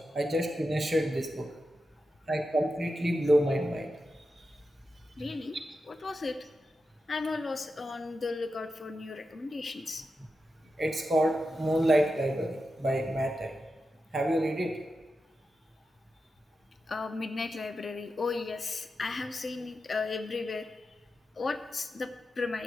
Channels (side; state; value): both; normal; correlation 0.90